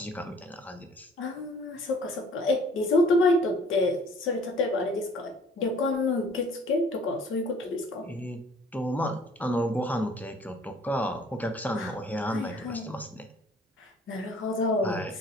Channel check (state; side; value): normal; both; correlation 0.55